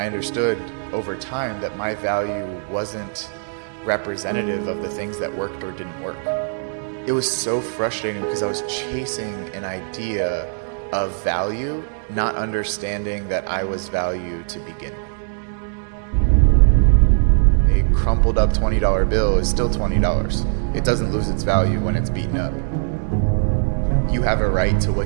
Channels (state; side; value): silent; left; digital silence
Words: understood over time that my value wasn't representative of the things that worked or didn't work. It was so frustrating because I was chasing an idea of value, not understanding that I was value to begin with. A crumpled up $20 bill is still $20. It doesn't lose its value when it's beaten up. You have a right to